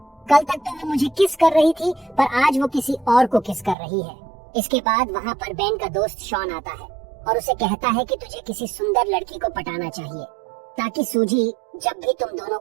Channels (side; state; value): left; drops out; at 3.8 s